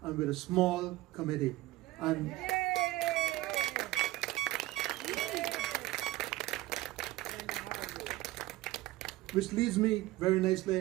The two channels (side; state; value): left; quieter; 17.9 dB